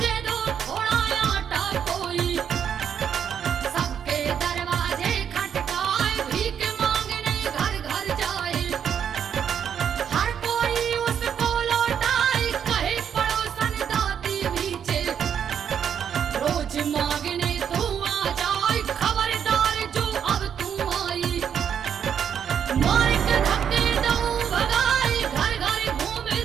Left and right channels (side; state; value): left; quieter; 8.2 dB